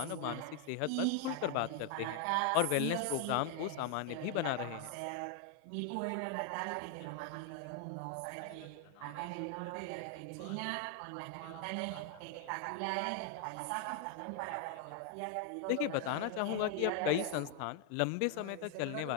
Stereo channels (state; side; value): different; both; correlation 0.00